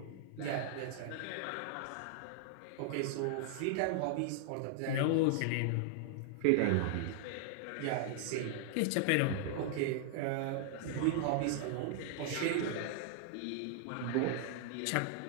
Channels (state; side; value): different; both; correlation 0.00